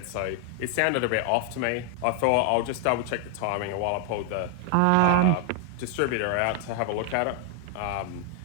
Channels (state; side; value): different; both; correlation 0.00